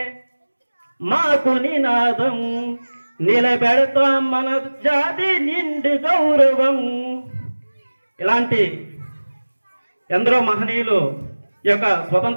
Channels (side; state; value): both; inverted; correlation -1.00